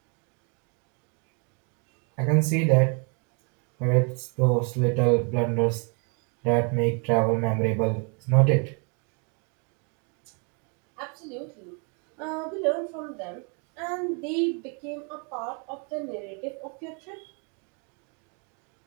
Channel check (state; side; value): quieter; left; 36.5 dB